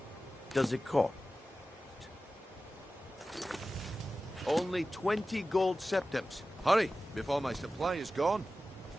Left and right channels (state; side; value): normal; both; correlation 0.95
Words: does it cost? Only 20 gold septims. Hurry, before my supply is gone.